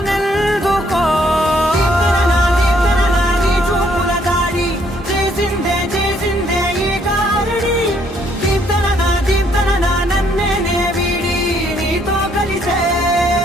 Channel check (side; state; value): both; normal; correlation 0.68